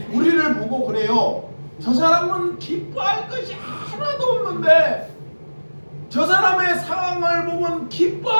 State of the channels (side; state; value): both; inverted; correlation -1.00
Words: 우리를 보고 그래요. 저 사람은 기뻐할 것이 하나도 없는데, 저 사람의 상황을 보면